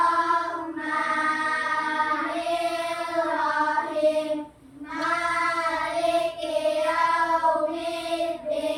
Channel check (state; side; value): identical; both; correlation 1.00